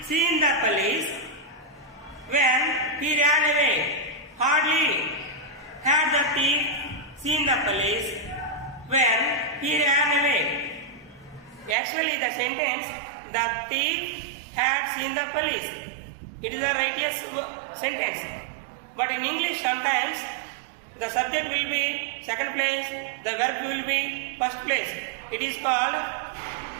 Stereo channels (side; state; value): left; drops out; at 11.8 s